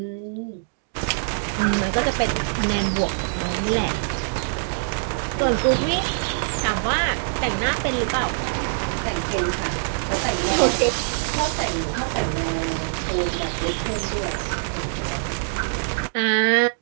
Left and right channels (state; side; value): silent; left; digital silence